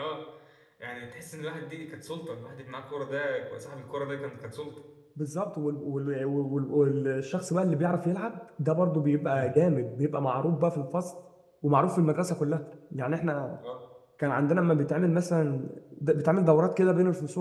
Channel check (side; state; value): both; identical; correlation 1.00